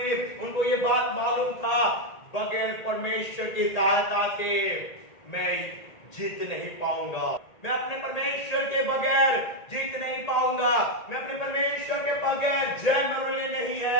उनको ये बात मालूम था, बगैर परमेश्वर की सहायता से मैं जीत नहीं पाऊंगा, मैं अपने परमेश्वर के बगैर जीत नहीं पाऊंगा, मैं अपने परमेश्वर के बगैर जय मेरे लिए नहीं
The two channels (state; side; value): late; right; 1.8 ms